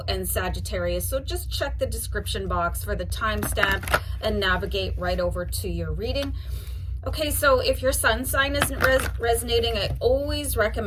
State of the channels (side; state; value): both; identical; correlation 1.00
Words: and Sagittarius. So just check the description box for the timestamp and navigate right over to your reading. Okay, so if your sun sign isn't resonating, I always